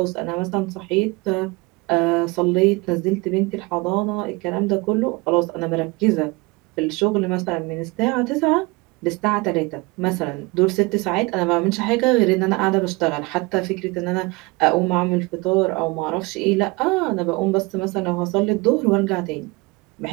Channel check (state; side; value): quieter; left; 25.1 dB